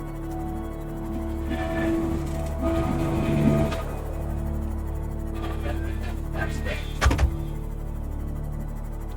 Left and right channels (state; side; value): identical; both; correlation 1.00